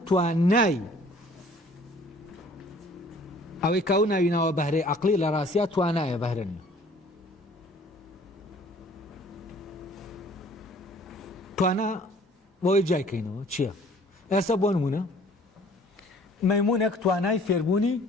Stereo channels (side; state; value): both; normal; correlation 0.54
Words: توانای ئەوەی کاو ناویناوە بەهرەی عەقڵی لە ڕاستیا توانایە بەهرە نییە توانە بۆی جایکەینەوە چییە؟ ئێستا بۆ نمونە مەیمونێک توانای فێربوونی